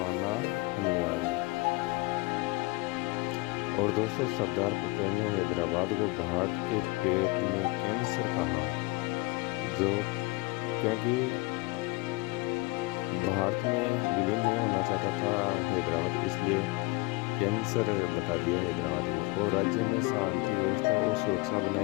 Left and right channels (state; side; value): quieter; right; 24.5 dB